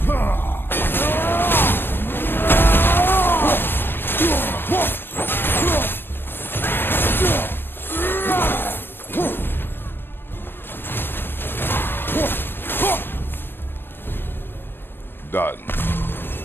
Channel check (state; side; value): late; right; 0.099 ms